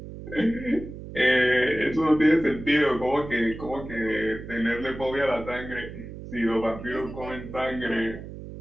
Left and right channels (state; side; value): noise; right; hum, 12 dB below the sound